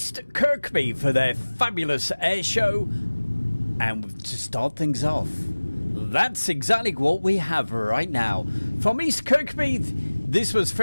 Kirkby for their fabulous air show. And to start things off, that's exactly what we have right now. From East Kirkby, this was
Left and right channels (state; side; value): inverted; both; correlation -1.00